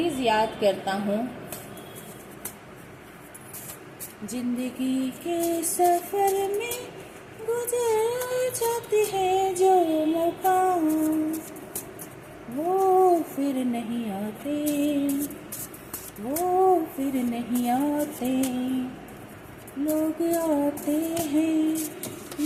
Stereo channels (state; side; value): identical; both; correlation 1.00